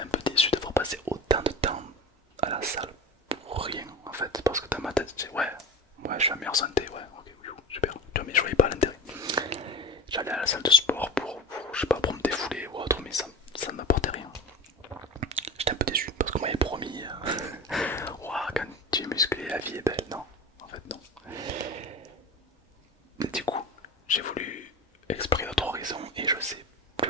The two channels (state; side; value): normal; both; correlation 0.31